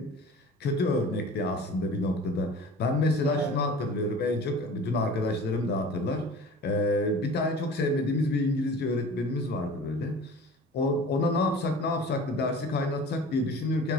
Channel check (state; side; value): normal; both; correlation 0.41